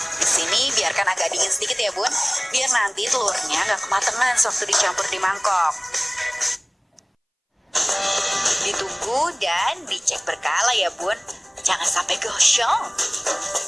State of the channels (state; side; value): identical; both; correlation 1.00